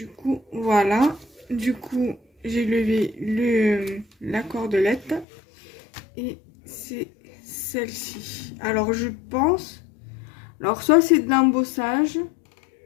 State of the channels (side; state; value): right; drops out; at 5.2 s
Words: coup, voilà. Du coup, j'ai levé la cordelette et c'est celle-ci. Alors, je pense... Alors, soit c'est de l'embossage,